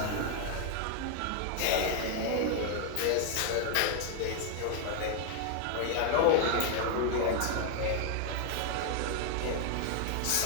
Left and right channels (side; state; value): both; different; correlation 0.00